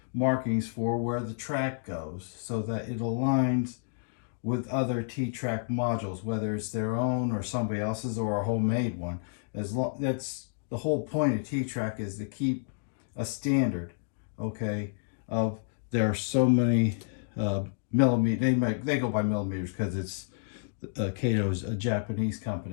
markings for where the track goes so that it aligns with other T-Trak modules, whether it's their own or somebody else's or a homemade one. That's the whole point of T-Trak, is to keep a standard, okay, of there are so many millimeters. They go by millimeters because it's Kato's a Japanese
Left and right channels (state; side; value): silent; right; digital silence